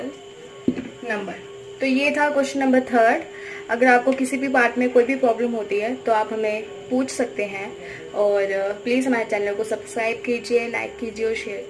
number. तो ये था क्वेश्चन नंबर थर्ड. अगर आपको किसी भी पार्ट में कोई भी प्रॉब्लम होती है तो आप हमें पूछ सकते हैं और प्लीज़ हमारे चैनल को सब्सक्राइब कीजिए, लाइक कीजिए और शेयर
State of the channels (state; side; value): identical; both; correlation 1.00